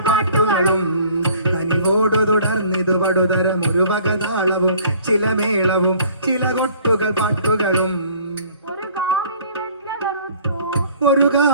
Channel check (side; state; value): both; inverted; correlation -0.54